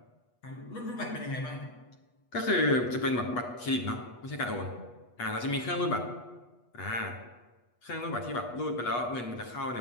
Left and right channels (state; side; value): late; right; 8.3 ms